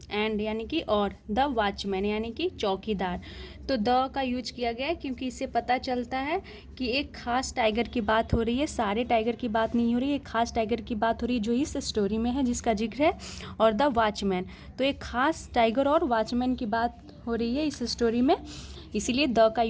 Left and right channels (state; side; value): identical; both; correlation 1.00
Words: एंड यानी कि और, द वॉचमैन यानी कि चौकीदार। तो द का यूज किया गया है क्योंकि इससे पता चलता है कि एक खास टाइगर की बात हो रही है, सारे टाइगर की बात नहीं हो रही है, एक खास टाइगर की बात हो रही है जो इस स्टोरी में है, जिसका जिक्र है, और द वॉचमैन। तो एक खास टाइगर और वॉचमैन की बात हो रही है इस स्टोरी में, इसीलिए द का